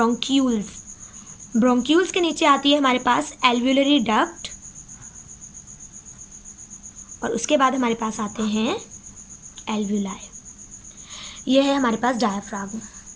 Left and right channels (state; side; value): identical; both; correlation 1.00